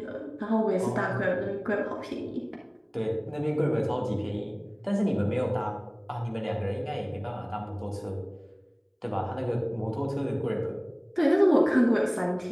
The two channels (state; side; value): identical; both; correlation 1.00